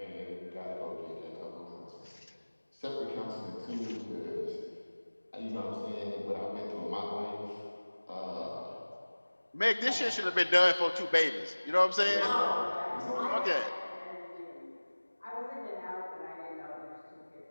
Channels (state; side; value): inverted; both; correlation -1.00